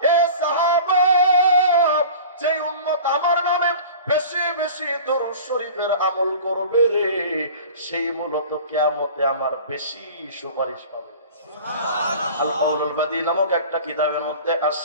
এ সাহাবা, যে উম্মত আমার নামে বেশি বেশি দরুদ শরীফের আমল করবে রে, সেই মূলত কিয়ামতে আমার বেশি সুপারিশ পাবে। সুবহানাল্লাহ। আল কাউলুল বাদী নামক একটা কিতাবের মধ্যে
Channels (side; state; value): both; inverted; correlation -0.40